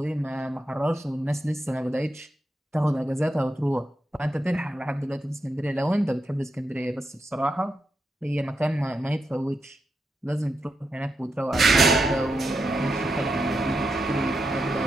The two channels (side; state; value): both; normal; correlation 0.86